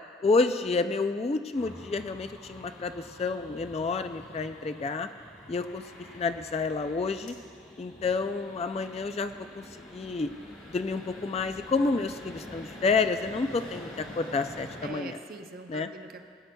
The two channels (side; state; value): right; quieter; 3.5 dB